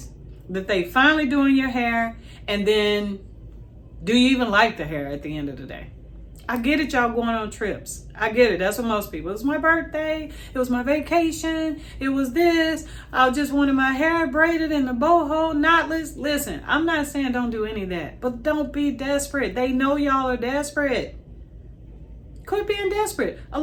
that they finally doing your hair. And then do you even like the hair at the end of the day? I get it, y'all going on trips. I get it. That's what most people. It was my birthday. It was my vacation. It was this. I just wanted my hair braided in the boho, knotless. Listen, I'm not saying don't do any of that, but don't be desperate. They know y'all are desperate. Quit being desperate. A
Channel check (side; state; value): both; identical; correlation 1.00